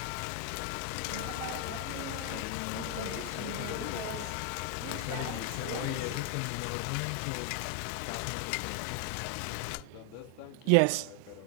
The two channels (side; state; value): both; different; correlation 0.00